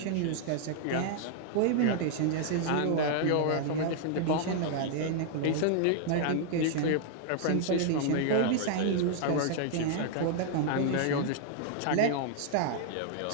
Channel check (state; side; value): different; both; correlation -0.01